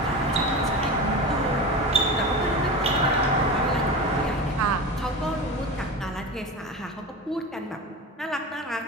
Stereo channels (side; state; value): both; normal; correlation 0.27